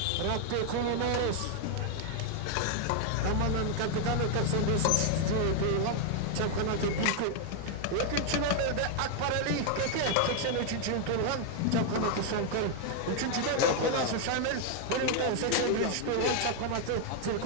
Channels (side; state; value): both; different; correlation 0.00